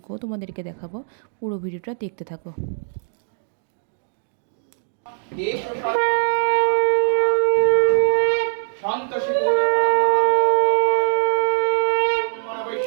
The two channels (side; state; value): left; silent; digital silence